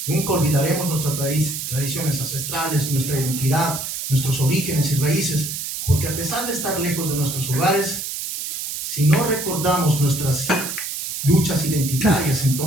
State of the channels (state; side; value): noise; right; hiss, 5 dB below the sound